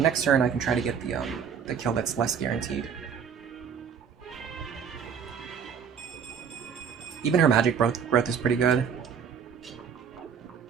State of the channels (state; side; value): quieter; left; 7.2 dB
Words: next turn I can try to get the kill that's less guaranteed. Even her magic growth is pretty good.